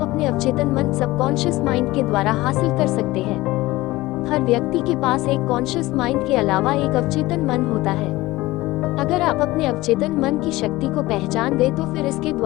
अपने अवचेतन मन सबकॉन्शियस माइंड के द्वारा हासिल कर सकते हैं। हर व्यक्ति के पास एक कॉन्शियस माइंड के अलावा एक अवचेतन मन होता है। अगर आप अपने अवचेतन मन की शक्ति को पहचान गए तो फिर इसके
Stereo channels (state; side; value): quieter; right; 19.0 dB